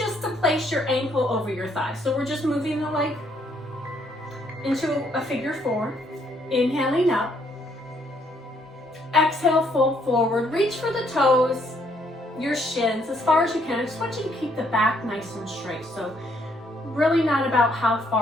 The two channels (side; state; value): both; normal; correlation 0.69